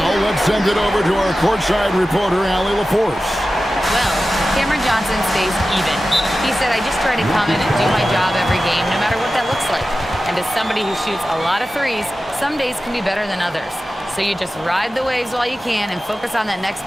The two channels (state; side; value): normal; both; correlation 0.94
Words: let's send it over to our courtside reporter, Allie LaForce. Well, Cameron Johnson stays even. He said, I just try to come in and do my job every game, no matter what that looks like. And as somebody who shoots a lot of threes, some days can be better than others. So you just ride the waves while you can and focus on that next